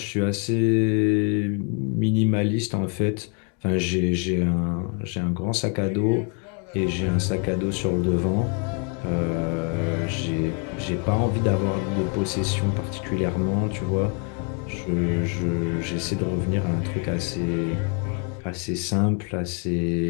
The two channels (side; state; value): right; quieter; 38.3 dB